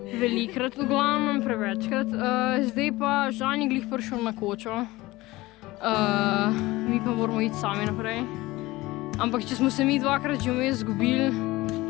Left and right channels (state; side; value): quieter; right; 19.6 dB